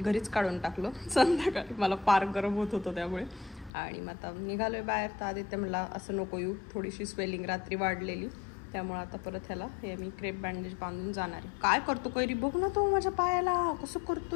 काढून टाकलं संध्याकाळी, मला फार गरम होत होतं त्यामुळे. आणि मग आता निघालोय बाहेर. तर आदित्य म्हणला असं नको येऊ, थोडीशी स्वेलिंग रात्री वाढलेली, त्यामुळे आता परत ह्याला हे मी क्रेप बँडेज बांधून जाणार आहे. काय करतो कैरी, बघ ना तो माझ्या पायाला कसं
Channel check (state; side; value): drops out; right; at 3.7 s